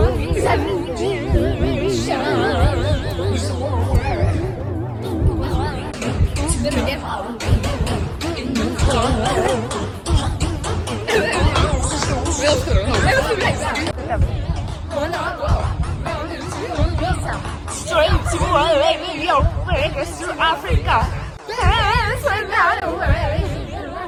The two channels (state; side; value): identical; both; correlation 1.00